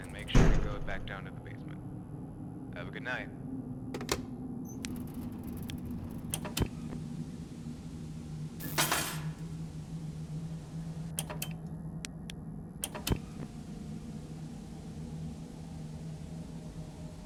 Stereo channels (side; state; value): both; identical; correlation 1.00